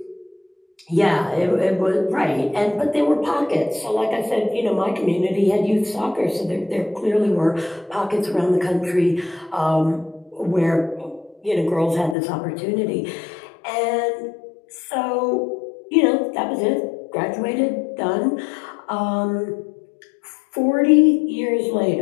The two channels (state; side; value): drops out; right; at 12.2 s